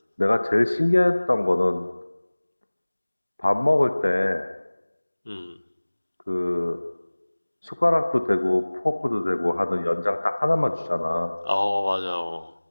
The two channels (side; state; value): both; inverted; correlation -1.00